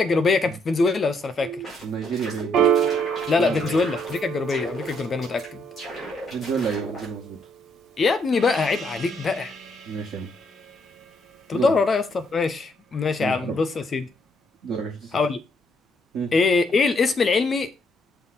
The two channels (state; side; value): normal; both; correlation 0.72